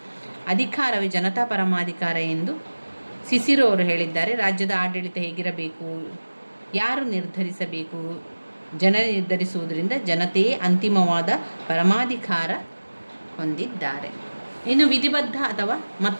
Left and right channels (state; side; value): inverted; both; correlation -1.00